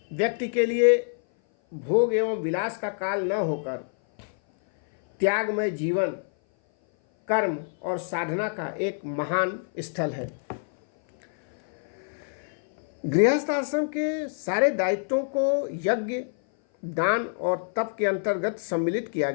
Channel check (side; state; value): right; silent; 57 dB below the other